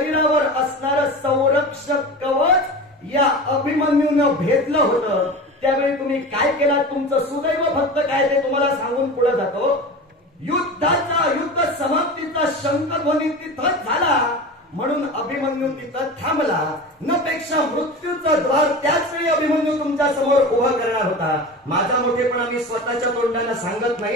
असणारं संरक्षक कवच या अभिमन्यूनं भेदलं होतं. त्यावेळी तुम्ही काय केलं? तुमचं सुदैव फक्त काय ते तुम्हाला सांगून पुढे जातो. युद्ध समाप्तीचा शंखध्वनी तिथंच झाला म्हणून अभिमन्यू तिथं थांबला. न पेक्षा मृत्यूचं द्वार त्याच वेळी अभिमन्यू तुमच्या समोर उभं करणार होता. माझा मोठेपणा मी स्वतःच्या तोंडानं सांगत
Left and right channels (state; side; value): normal; both; correlation 0.31